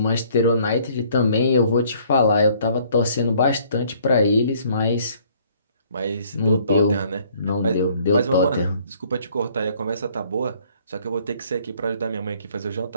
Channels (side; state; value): both; inverted; correlation -0.60